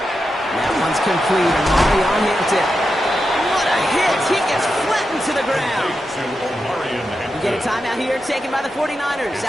That one's complete, and Molly on Hampton. What a hit! He gets flattened to the ground. We get a timeout here, taken by the 49ers.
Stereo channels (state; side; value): normal; both; correlation 0.88